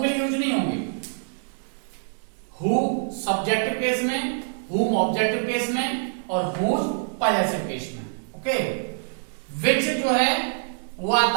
लिए यूज नहीं होंगे। हु सब्जेक्टिव केस में, whom ऑब्जेक्टिव केस में, और whose पॉजेसिव केस में। ओके, which जो है वो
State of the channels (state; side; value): silent; left; digital silence